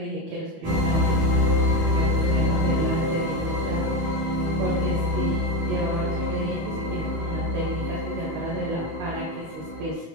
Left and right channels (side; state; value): left; late; 19 ms